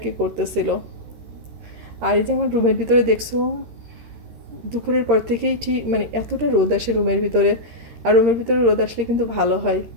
কি করতেছিল। আর এই যে আমার রুমের ভিতরে দেখছো দুপুরের পর থেকেই ঠিক মানে এতটা রোদ আসে রুমের ভিতরে, আর রুমের ভিতরে রোদ আসলে কিন্তু ভালো হয়।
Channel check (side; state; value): left; late; 13 ms